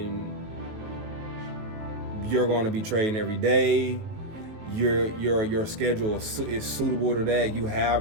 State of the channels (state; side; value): late; left; 19 ms